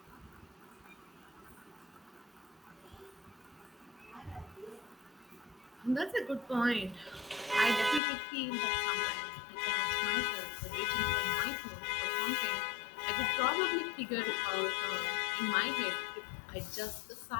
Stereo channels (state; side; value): drops out; right; at 8.0 s